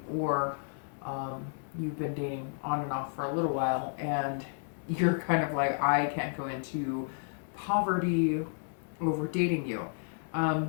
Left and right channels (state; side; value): silent; right; digital silence